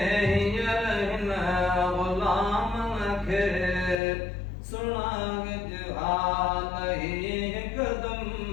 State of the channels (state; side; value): drops out; right; at 4.0 s